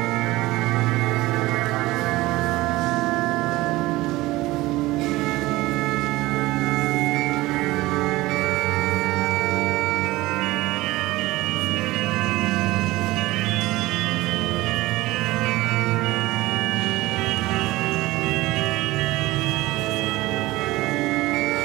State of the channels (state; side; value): quieter; left; 18.9 dB